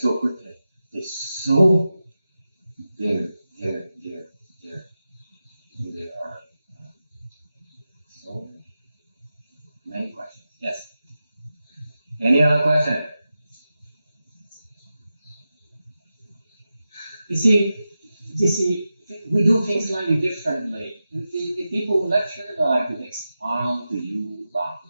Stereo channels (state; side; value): inverted; both; correlation -0.92